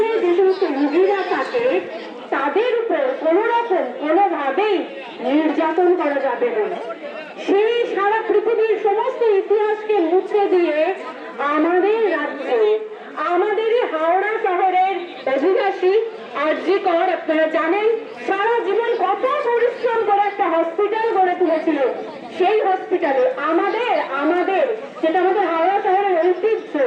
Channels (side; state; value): both; identical; correlation 1.00